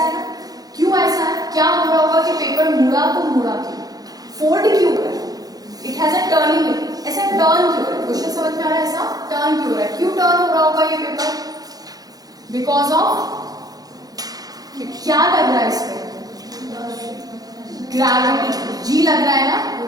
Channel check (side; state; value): left; late; 0.18 ms